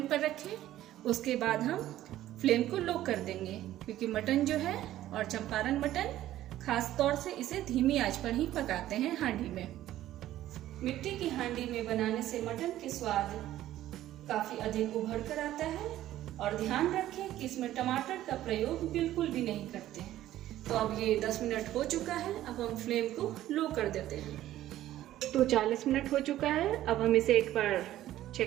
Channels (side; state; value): left; quieter; 13.7 dB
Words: पर रखें। उसके बाद हम फ्लेम को लो कर देंगे, क्योंकि मटन जो है और चंपारण मटन खास तौर से इसे धीमी आंच पर ही पकाते हैं हांडी में। मिट्टी की हांडी में बनाने से मटन के स्वाद काफी अधिक उभर कर आता है। और ध्यान रखें कि इसमें टमाटर का प्रयोग बिल्कुल भी नहीं करते हैं। तो अब ये 10 मिनट हो चुका है, अब हम फ्लेम को लो कर देते हैं। तो 40 मिनट हो चुका है, अब हम इसे एक बार